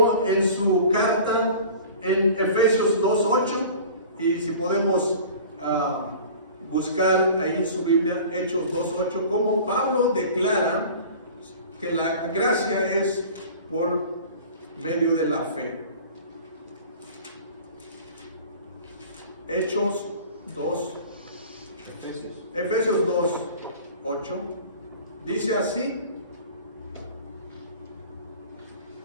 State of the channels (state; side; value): inverted; both; correlation -0.42